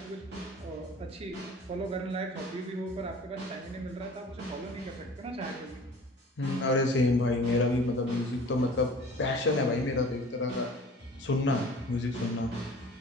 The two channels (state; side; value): normal; both; correlation 0.45